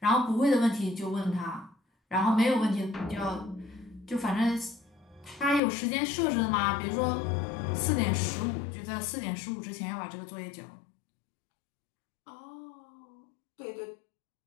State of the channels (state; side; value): drops out; right; at 5.6 s